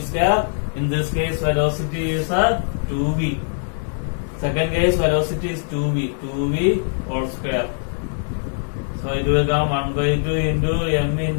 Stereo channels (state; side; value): silent; right; digital silence